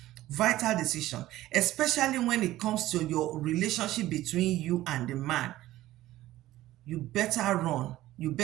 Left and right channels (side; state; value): left; quieter; 15.5 dB